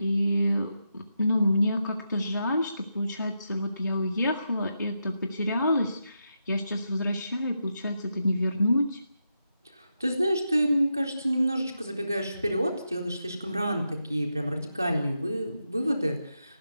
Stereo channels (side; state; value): both; inverted; correlation -0.85